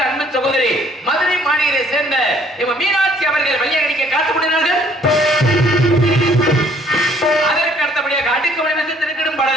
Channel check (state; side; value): normal; both; correlation 0.61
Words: அன்பின் சகோதரி மதுரை மாநகரை சேர்ந்த மீனாட்சி அவர்கள் வழியடிக்க காத்துக்கொண்டார்கள். அதற்கு அடுத்தபடியாக அடுக்கு வடிவத்தை திருக்கிடும்